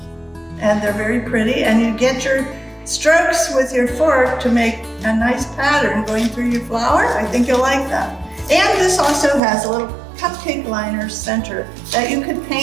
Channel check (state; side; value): drops out; left; at 9.4 s